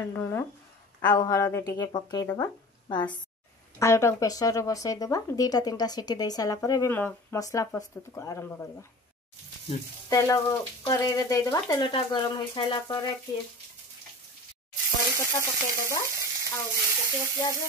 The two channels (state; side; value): normal; both; correlation 0.37